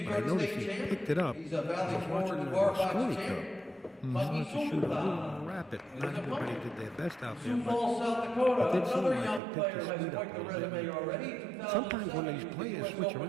I noticed he picked it up. I was watching the Mosconi Cup. He started to shoot a little more rapid. Not everybody did their best out there, but it did seem like he picked his speed up a little bit. Sometimes when these players switch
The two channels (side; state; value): left; drops out; at 9.4 s